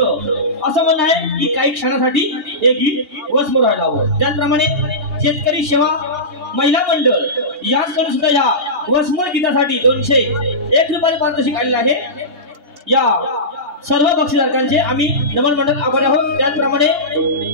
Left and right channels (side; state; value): left; late; 2.8 ms